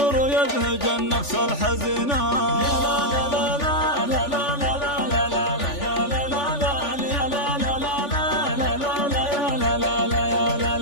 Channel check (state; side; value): late; right; 3.4 ms